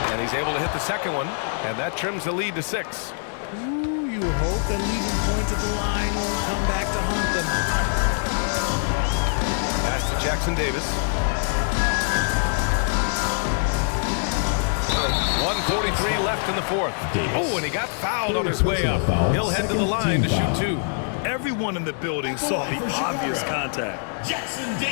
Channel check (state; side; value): silent; right; digital silence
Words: And he's able to hit the second one, and that trims the lead to 6. Ooh, you hope that leaving points at the line won't come back to haunt them. Pass to Jackson Davis. 1:43 left in the 4th. Oh, and he got fouled on his way up. He'll head to the line to shoot 2. Everyone in the building saw the obvious contact. Jackson